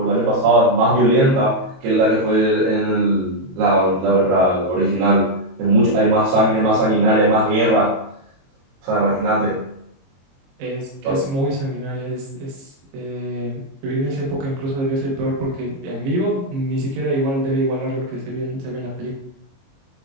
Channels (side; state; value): left; late; 22 ms